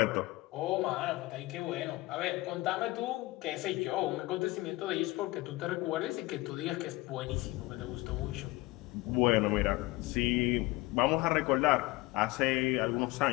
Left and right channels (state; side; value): quieter; right; 20.9 dB